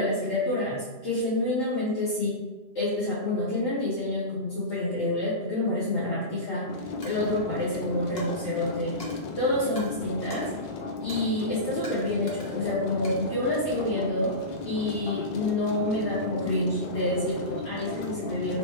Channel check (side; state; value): right; late; 2.9 ms